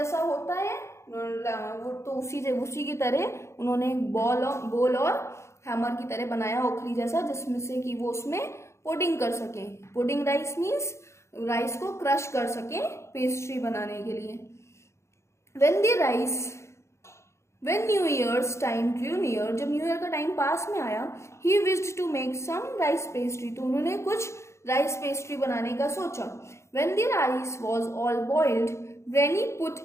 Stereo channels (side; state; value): right; late; 0.13 ms